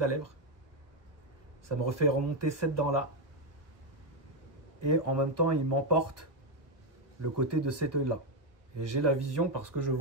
lèvre. Ça me refait remonter cette dent-là. Et en même temps, il m'emporte le côté de cet œil-là. Et j'ai la vision parce que je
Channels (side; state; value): left; late; 1.4 ms